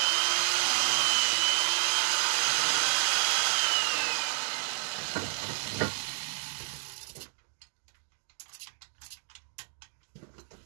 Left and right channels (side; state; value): left; silent; digital silence